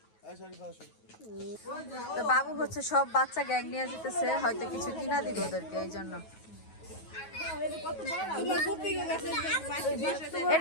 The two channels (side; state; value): right; late; 9.3 ms